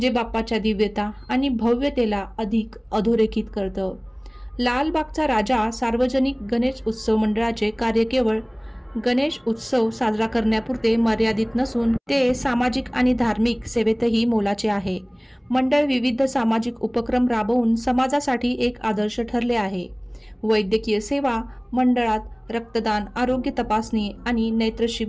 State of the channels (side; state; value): both; identical; correlation 1.00